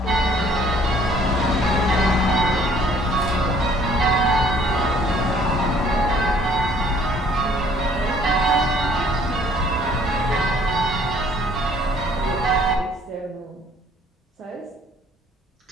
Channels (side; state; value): both; normal; correlation 0.58